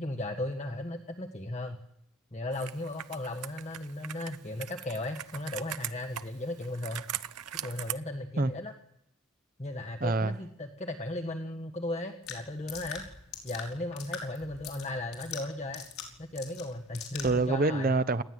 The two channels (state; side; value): normal; both; correlation 0.48